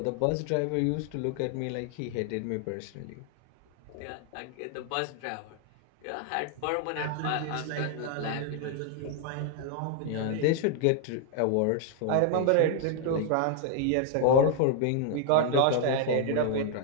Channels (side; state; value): both; different; correlation 0.00